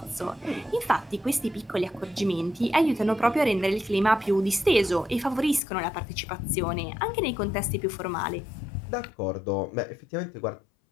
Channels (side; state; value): right; drops out; at 5.6 s